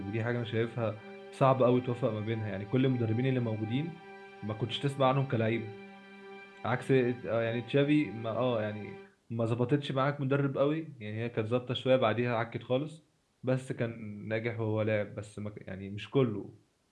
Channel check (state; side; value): identical; both; correlation 1.00